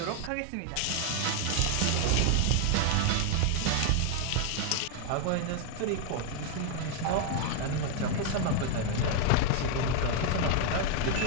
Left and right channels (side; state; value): both; different; correlation 0.00